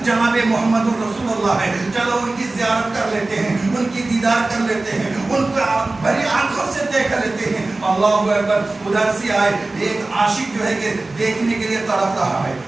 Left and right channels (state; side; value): quieter; left; 3.1 dB